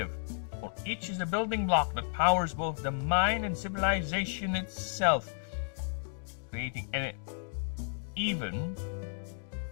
for each is a building block that powers both the mind and civilization itself, creating even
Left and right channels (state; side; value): silent; right; digital silence